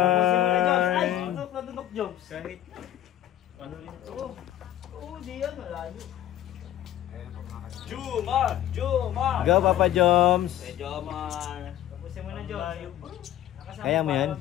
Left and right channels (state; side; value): quieter; right; 12.4 dB